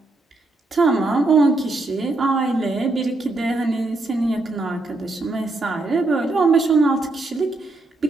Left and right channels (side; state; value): left; quieter; 3.0 dB